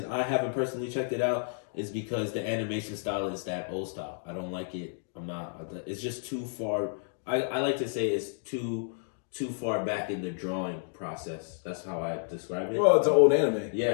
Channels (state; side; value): silent; right; digital silence